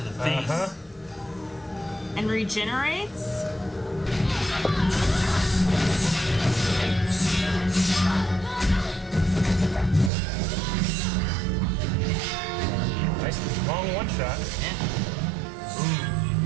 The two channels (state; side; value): drops out; left; at 10.1 s